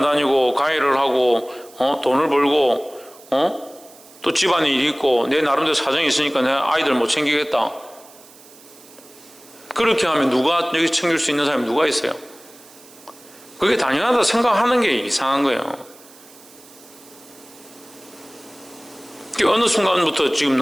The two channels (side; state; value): right; noise; hiss, 23 dB below the sound